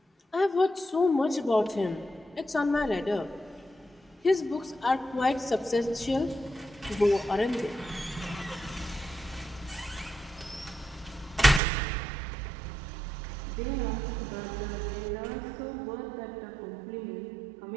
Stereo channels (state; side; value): drops out; left; at 11.6 s